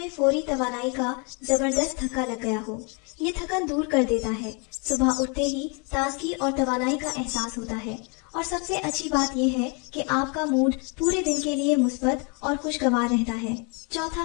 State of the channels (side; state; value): right; quieter; 34.0 dB